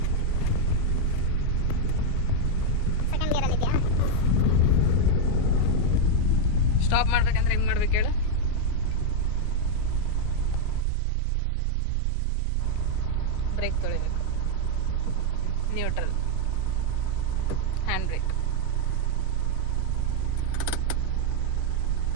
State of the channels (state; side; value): different; both; correlation 0.00